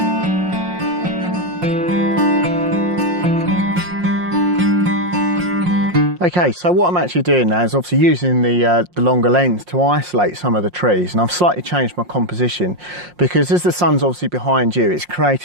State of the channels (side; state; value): left; late; 5.6 ms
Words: Okay, so what I'm actually doing now is obviously using the longer lens to isolate some of the trees, and I've slightly changed my composition because as the sun's obviously behind you, it's